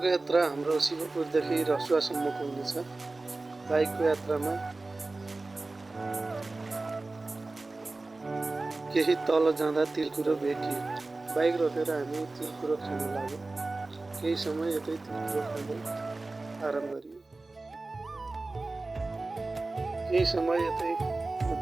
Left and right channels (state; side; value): quieter; left; 3.3 dB